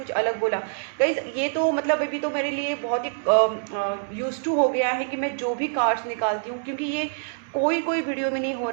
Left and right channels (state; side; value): silent; left; 62 dB below the other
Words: अलग बोला गाइस। ये तो मतलब अभी तो मेरे लिए बहुत ही यूज टू हो गया है कि मैं जो भी कार्ड्स निकालती हूँ, क्योंकि ये कोई वीडियो में नहीं हो